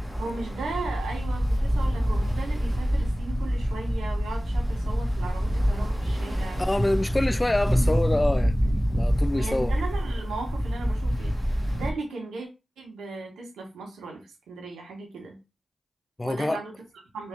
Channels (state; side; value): normal; both; correlation 0.97